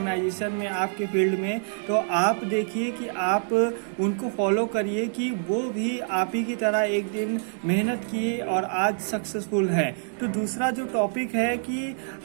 में, आपके फील्ड में, तो आप देखिए कि आप उनको फॉलो करिए कि वो भी आप ही की तरह एक दिन मेहनत किए और आज सक्सेसफुल हैं। तो दूसरा जो टॉपिक है कि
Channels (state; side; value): silent; left; digital silence